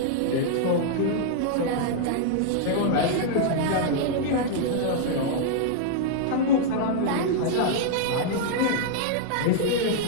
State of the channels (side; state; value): both; different; correlation -0.01